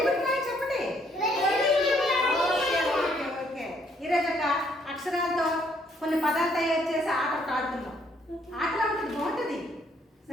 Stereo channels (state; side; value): normal; both; correlation 0.68